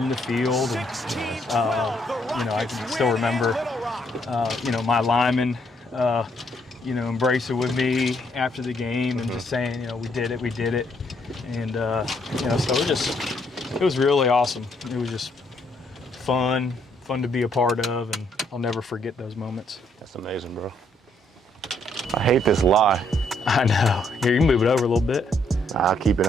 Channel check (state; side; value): normal; both; correlation 0.71